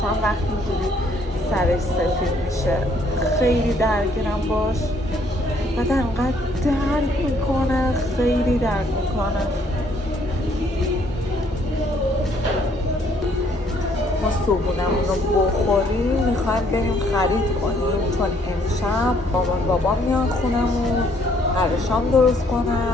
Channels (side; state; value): both; normal; correlation 0.66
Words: وقتی اینجوری سرش سفید میشه. خیلی درگیرم باش، بعد انقدر درد میکنه، خیلی درد میکنه. ما صبحونمون رو بخوریم میخوایم بریم خرید کنیم، چون امشب مامان بابا میان خونمون، قراره شام درست